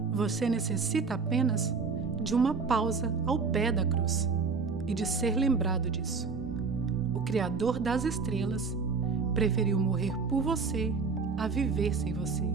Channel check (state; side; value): quieter; left; 4.9 dB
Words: Você necessita apenas de uma pausa ao pé da cruz e de ser lembrado disso. O Criador das estrelas preferiu morrer por você a viver sem você.